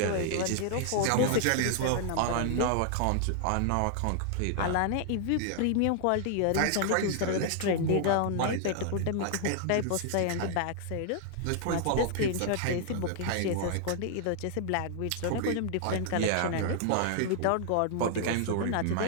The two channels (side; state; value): both; different; correlation 0.00